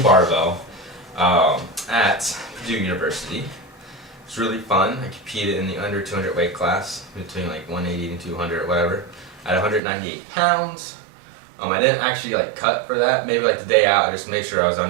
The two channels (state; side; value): drops out; left; at 9.8 s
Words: Barbell at Purdue University. It was really fun. I competed in the under 200 weight class, between like 180 and 200 or whatever, at 198 pounds. I didn't actually cut for that. Maybe the day out, I just made sure I was